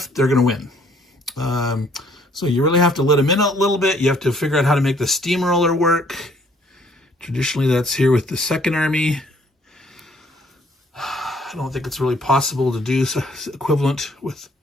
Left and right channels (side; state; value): both; normal; correlation 0.62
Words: they're going to win. So you really have to let them in a little bit. You have to figure out how to make the steamroller work. Traditionally, that's here with the Second Army. I don't think it's really possible to do equivalent